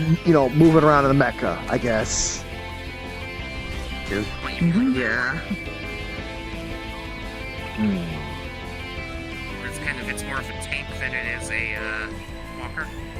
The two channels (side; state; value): both; identical; correlation 1.00